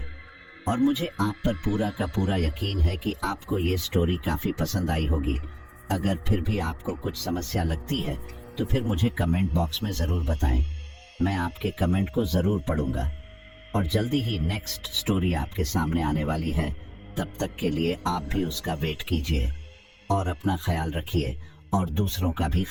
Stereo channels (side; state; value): both; identical; correlation 1.00